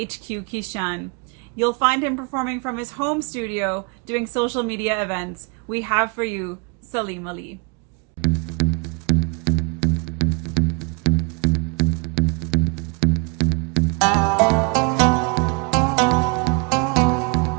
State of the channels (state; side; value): quieter; left; 33.3 dB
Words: Kishan. You'll find him performing from his home studio, doing social media events. We have for you Salim Ali.